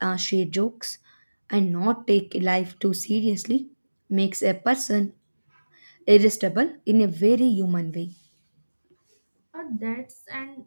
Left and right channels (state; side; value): inverted; both; correlation -1.00